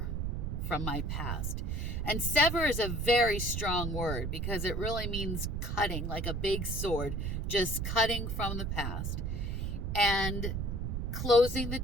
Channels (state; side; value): noise; right; rumble, 1 dB below the sound